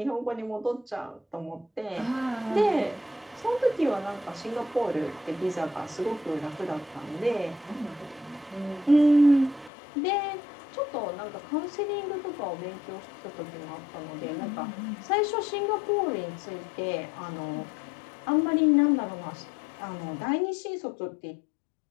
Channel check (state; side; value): drops out; right; at 9.7 s